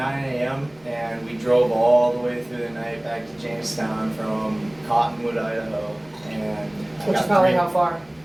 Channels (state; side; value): noise; left; rumble, 30 dB below the sound